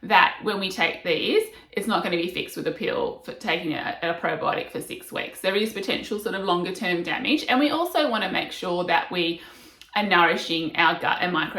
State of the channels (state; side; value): identical; both; correlation 1.00